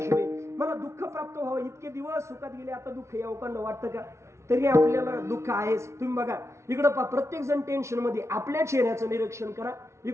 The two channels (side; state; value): left; late; 0.13 ms